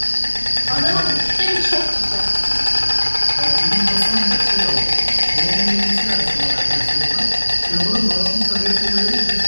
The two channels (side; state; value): both; inverted; correlation -1.00